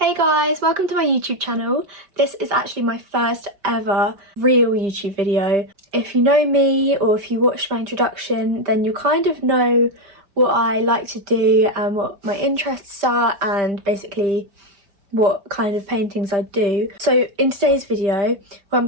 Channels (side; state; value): left; late; 5.0 ms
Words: guys, welcome to my YouTube channel. This is actually my first ever real YouTube video. If you know me or if you watched my introduction, then you kind of know what I like to do and what my interests are and basically what kind of paintings I do. So in today's video, what I'm